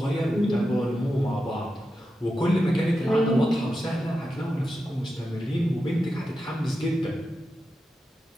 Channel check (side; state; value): both; normal; correlation 0.90